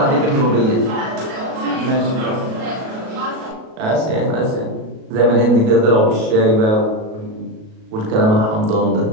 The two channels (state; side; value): late; left; 37 ms